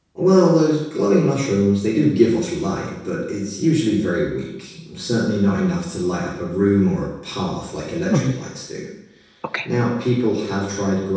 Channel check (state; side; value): identical; both; correlation 1.00